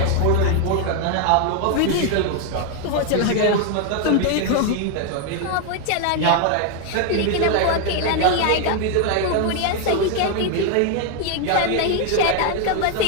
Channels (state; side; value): different; both; correlation 0.01